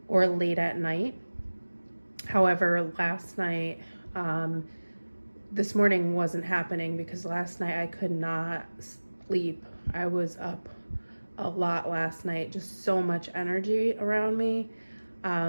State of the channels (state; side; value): inverted; both; correlation -1.00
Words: or late at night. However, last night, this morning wasn't happening because last night I could not sleep. I was up a lot last night, just so much energy around me.